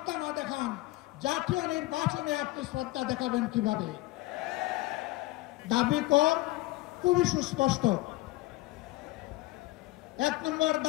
না দেখান, জাতীয় নির্বাচনে আপনি শ্রদ্ধা দেখাবেন কিভাবে? দাবি কর খুবই সুস্পষ্ট। 1 নম্বর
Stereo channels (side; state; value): right; quieter; 19.4 dB